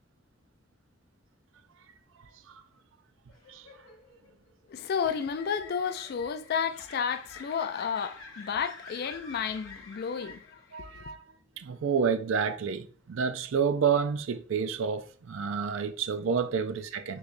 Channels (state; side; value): normal; both; correlation -0.09